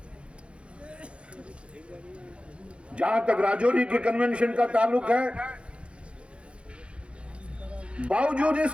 जहां तक राजौरी के कन्वेंशन का ताल्लुक है, बावजूद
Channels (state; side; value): late; left; 0.059 ms